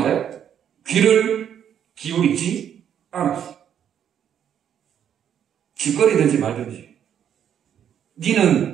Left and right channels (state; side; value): quieter; left; 9.2 dB